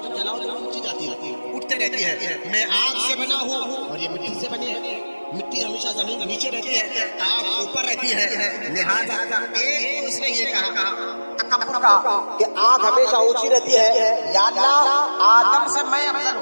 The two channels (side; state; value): both; inverted; correlation -1.00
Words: جلاؤ جلاؤ اونچی جاتی ہے، اٹھتے رہتی ہے. میں آگ سے بنا ہوں اور یہ مٹی سے بنے ہیں، مٹی ہمیشہ زمین کے نیچے رہتی ہے، آگ اوپر رہتی ہے. لہذا ایک اس نے یہ کہا تکبر کا کہ آگ ہمیشہ اونچی رہتی ہے، یا اللہ آدم سے میں افضل